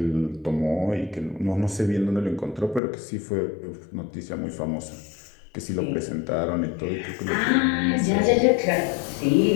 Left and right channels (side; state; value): right; drops out; at 2.8 s